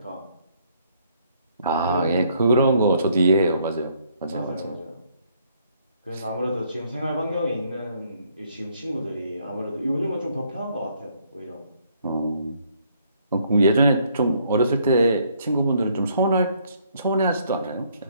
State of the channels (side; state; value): both; inverted; correlation -0.67